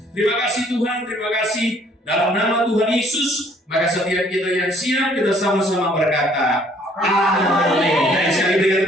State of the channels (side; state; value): both; normal; correlation 0.61